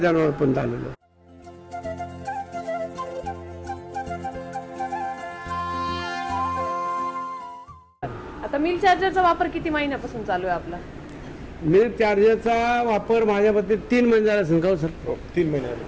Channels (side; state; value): both; identical; correlation 1.00